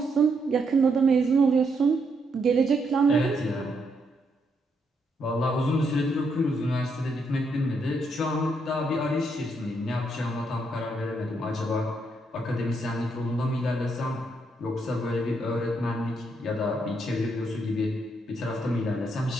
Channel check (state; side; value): normal; both; correlation 0.77